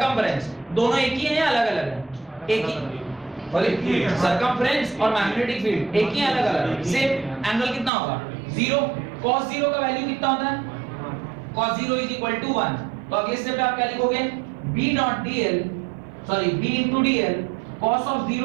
दोनों एक ही है या अलग अलग है, एक ही, सर्कमफ्रेंस और मैग्नेटिक फील्ड एक ही, अलग अलग। सेम एंगल कितना होगा, 0। cos 0 का वैल्यू कितना होता है, cos 0 इज इक्वल टू 1। तो अगले स्टेप पे आप क्या लिखोगे, B dot dl, sorry B into dl cos of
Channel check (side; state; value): left; drops out; at 7.9 s